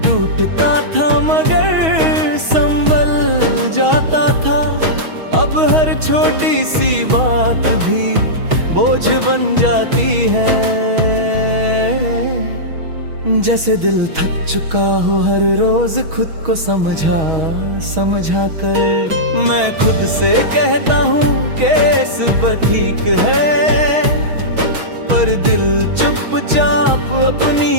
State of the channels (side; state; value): left; late; 6.3 ms